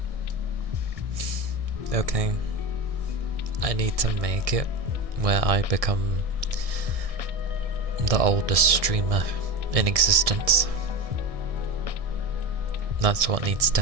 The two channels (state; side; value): late; left; 1.6 ms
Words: Okay. I need to make it where I become the oldest streamer in existence. That's what needs to